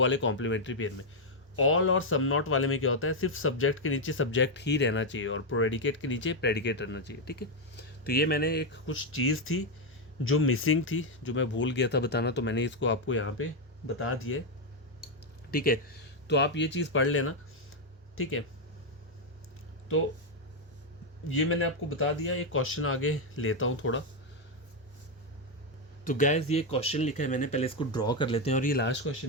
कॉम्प्लीमेंट्री पेयर में। ऑल और सम नॉट वाले में क्या होता है, सिर्फ सब्जेक्ट के नीचे सब्जेक्ट ही रहना चाहिए और प्रेडिकेट के नीचे प्रेडिकेट रहना चाहिए, ठीक है। तो ये मैंने एक कुछ चीज़ थी जो मिसिंग थी, जो मैं भूल गया था बताना, तो मैंने इसको आपको यहाँ पे बता दिया है, ठीक है। तो आप ये चीज़ पढ़ लेना, ठीक है। तो ये मैंने आपको बता दिया। एक क्वेश्चन आगे लेता हूँ थोड़ा। तो गैस ये क्वेश्चन लिखा है मैंने, पहले इसको ड्रॉ कर लेते हैं, और ये लास्ट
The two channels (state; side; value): normal; both; correlation 0.02